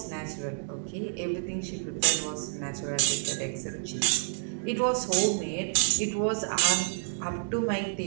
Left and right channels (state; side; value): silent; left; digital silence